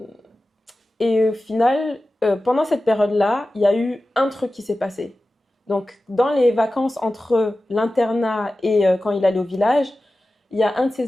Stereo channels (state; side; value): normal; both; correlation 0.95